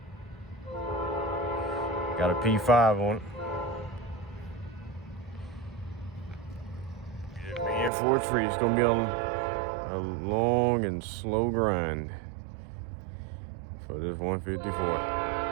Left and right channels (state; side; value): drops out; left; at 7.9 s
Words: Got a P5 on it. Being for a treat, it's gonna be a long and slow grind for this 154.